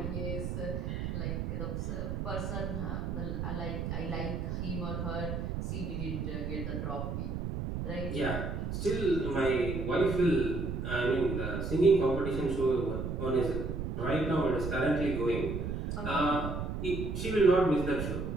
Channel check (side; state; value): right; noise; rumble, 3 dB below the sound